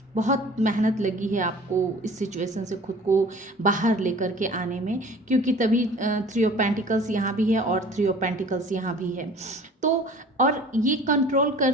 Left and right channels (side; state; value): both; normal; correlation 0.46